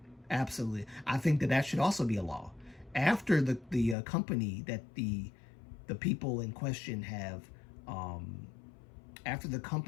absolutely. I think that that should also be a law. After the company that the people in question have, after the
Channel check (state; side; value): drops out; right; at 4.0 s